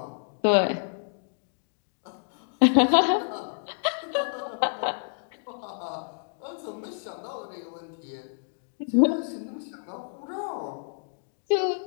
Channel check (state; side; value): silent; right; digital silence